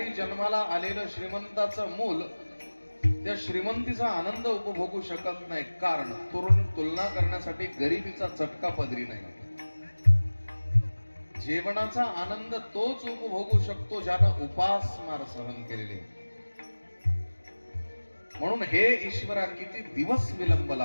जन्माला आलेलं श्रीमंताचं मूल त्या श्रीमंतीचा आनंद उपभोगू शकत नाही, कारण तुलना करण्यासाठी गरिबीचा चटका पदरी नाही. जेवणाचा आनंद तोच उपभोगू शकतो ज्यानं उपासमार सहन केलेले. म्हणून हे ईश्वरा, किती दिवस विलंब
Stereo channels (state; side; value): inverted; both; correlation -1.00